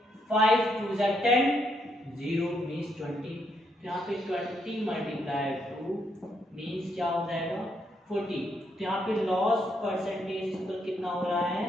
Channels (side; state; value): both; normal; correlation 0.76